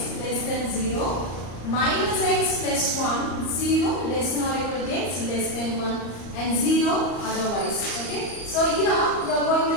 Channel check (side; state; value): right; late; 34 ms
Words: less than 0 minus x plus 1 0 less than or equal to x less than 1 and 0 otherwise. Okay. So here you are